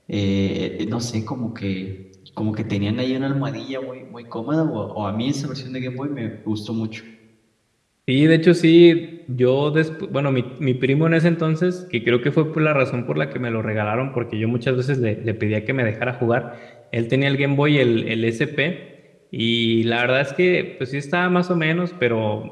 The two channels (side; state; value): both; identical; correlation 1.00